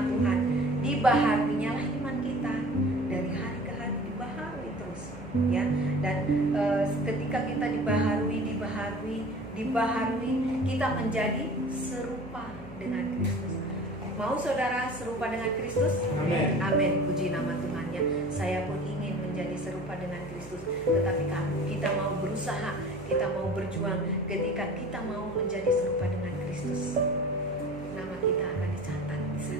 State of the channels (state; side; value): noise; right; hum, 18 dB below the sound